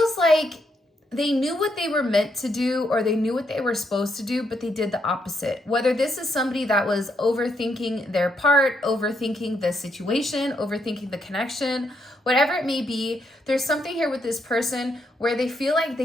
like they knew what they were meant to do or they knew what they were supposed to do, but they did the opposite. Whether this is somebody that was overthinking their part, overthinking the situation, overthinking the connection, whatever it may be, there's something here with this person where they feel like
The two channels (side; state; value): both; normal; correlation 0.77